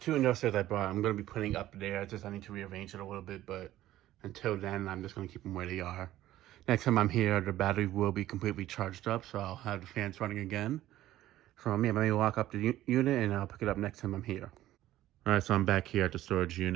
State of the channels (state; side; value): quieter; left; 14.4 dB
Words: industrials I brought, I'm gonna be putting up there. I need to rearrange it a little bit, but until then, I'm just gonna keep them where they are. Next time I'm here, the battery will be completely charged up, so I'll have the fans running again. So yeah, let me lock up the unit, and I'll pick it up next time I'm here. All right, so I'm back here at the storage